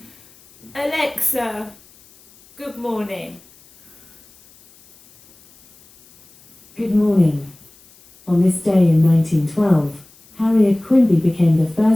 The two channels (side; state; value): left; noise; hiss, 28 dB below the sound